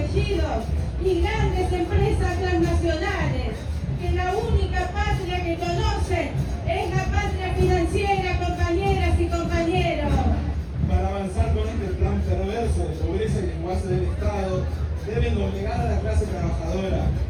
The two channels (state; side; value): identical; both; correlation 1.00